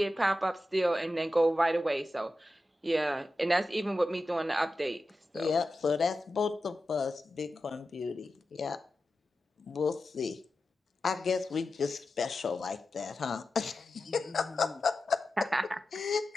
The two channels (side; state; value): both; normal; correlation 0.92